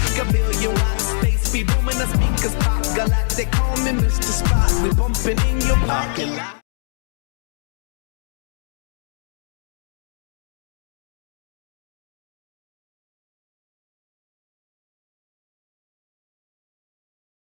a billion watts. Space be booming, the speakers pop. Galactic, call me Mr. Spot. We bumping in your parking lot.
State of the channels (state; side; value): silent; right; digital silence